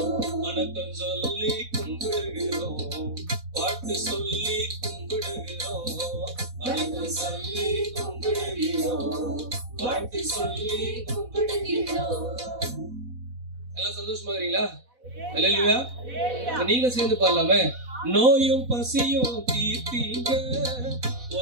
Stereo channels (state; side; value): late; left; 4.1 ms